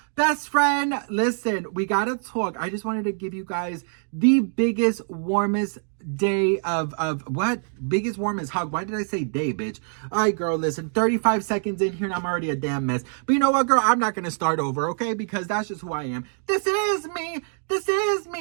Best friend, listen, we gotta talk. I just wanted to give you guys the biggest, warmest day of what? Biggest, warmest hug. Why did I say day, bitch? All right, girl, listen, 35 seconds in here and I'm already a damn mess. But you know what, girl? I'm not gonna start over, okay? Because that's just who I am. This is me. This is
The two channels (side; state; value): left; silent; 62 dB below the other